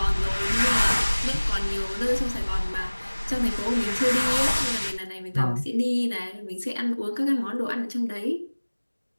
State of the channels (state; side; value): inverted; both; correlation -1.00